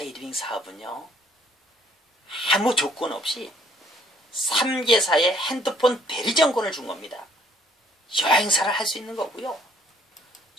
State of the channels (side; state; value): both; normal; correlation 0.62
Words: 사업은요. 아무 조건 없이 3개사의 핸드폰 대리점권을 준 겁니다. 여행사를 할 수 있는 거고요.